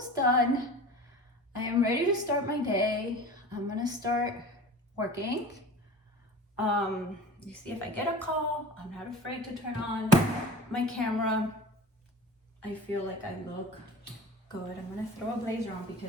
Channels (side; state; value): both; normal; correlation 0.37